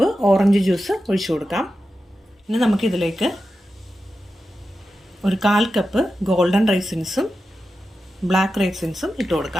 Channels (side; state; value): both; normal; correlation 0.91